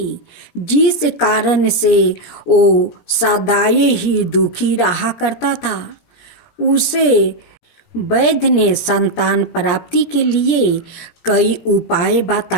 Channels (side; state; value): right; late; 17 ms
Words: जिस कारण से वो सदाए ही दुखी रहा करता था। उसे वैद्य ने संतान प्राप्ति के लिए कई उपाय